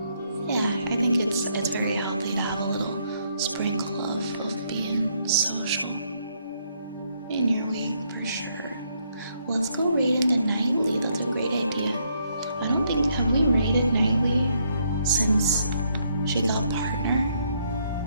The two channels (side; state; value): both; inverted; correlation -0.72